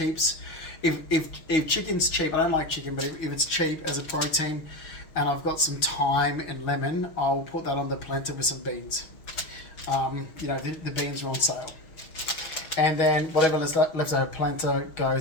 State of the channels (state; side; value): late; right; 6.3 ms